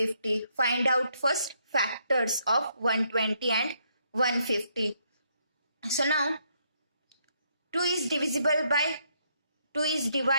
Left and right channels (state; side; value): inverted; both; correlation -0.73